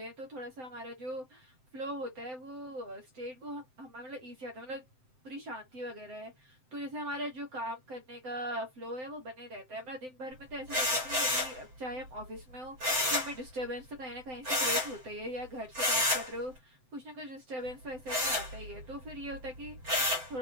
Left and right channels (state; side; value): late; left; 7.8 ms